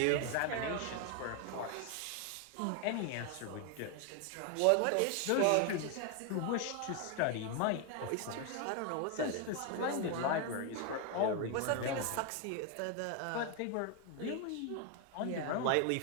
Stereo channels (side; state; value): both; different; correlation 0.01